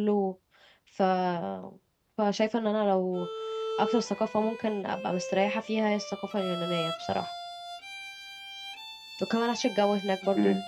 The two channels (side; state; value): both; identical; correlation 1.00